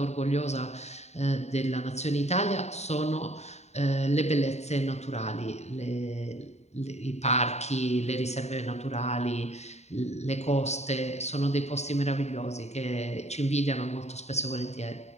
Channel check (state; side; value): late; right; 0.32 ms